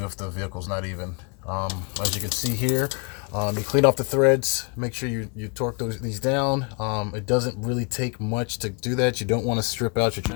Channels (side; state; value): right; quieter; 34.4 dB